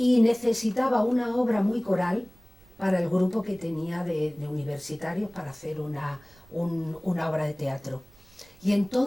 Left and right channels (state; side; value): noise; right; rumble, 27 dB below the sound